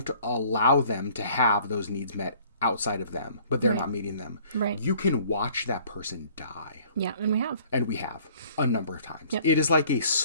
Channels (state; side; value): inverted; both; correlation -0.55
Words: allow them to have those needs met outside of them, but they're not meeting them. Right. You can watch that person die. Yeah, and we have. And we have a number of times. Yep. It is like a